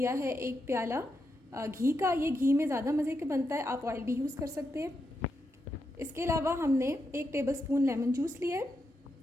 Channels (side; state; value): both; normal; correlation 0.84